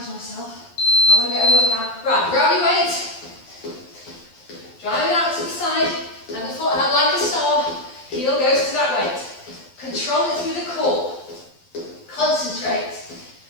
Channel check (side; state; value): right; late; 12 ms